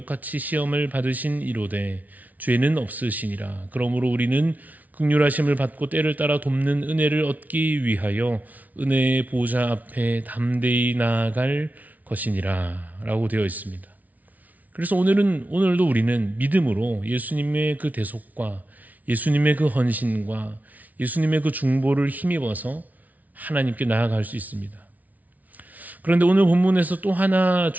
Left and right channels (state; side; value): late; left; 0.074 ms